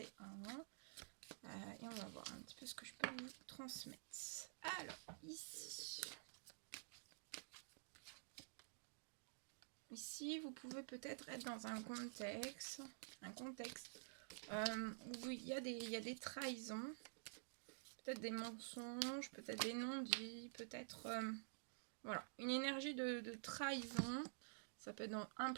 Et on va voir un petit peu ce que je peux vous transmettre. Alors, ici... Ici, vous pouvez peut-être être dans un contexte où il y a des trahisons, peut-être des mensonges, peut-être des non-dits, peut-être voilà, une énergie de trahison. Ça peut être dans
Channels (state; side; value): silent; left; digital silence